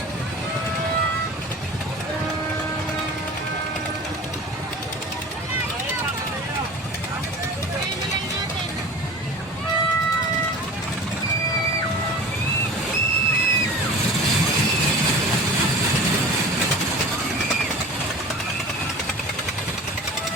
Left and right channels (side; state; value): both; normal; correlation 0.39